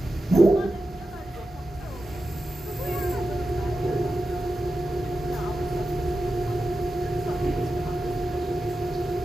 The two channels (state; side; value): normal; both; correlation 0.91